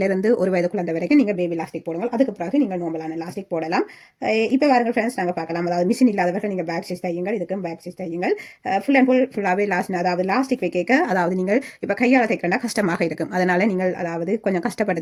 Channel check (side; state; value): both; identical; correlation 1.00